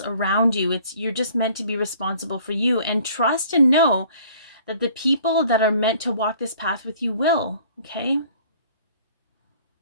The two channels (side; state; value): both; inverted; correlation -0.54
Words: around you. You're just meant to be responsible for you, and trust and know that the people that are meant to walk this path with you will, okay?